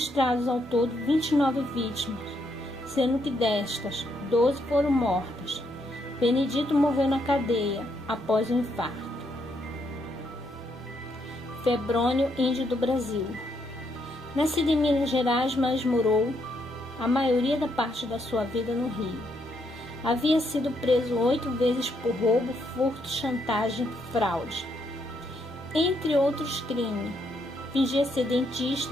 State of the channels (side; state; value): both; normal; correlation 0.76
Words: ao todo 29 vítimas, sendo que destas, 12 foram mortas. Benedito morreu na cadeia após um infarto. Febrônio, índio do Brasil. Nascido em Minas Gerais, mas morou a maioria da parte da sua vida no Rio. Havia sido preso 8 vezes por roubo, furto, chantagem e fraude, entre outros crimes. Fingia ser